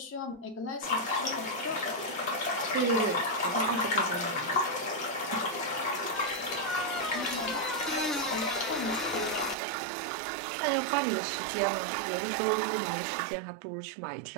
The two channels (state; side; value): drops out; left; at 9.6 s